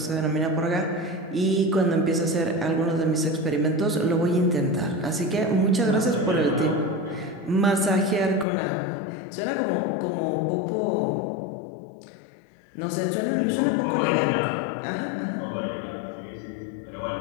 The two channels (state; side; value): drops out; right; at 8.5 s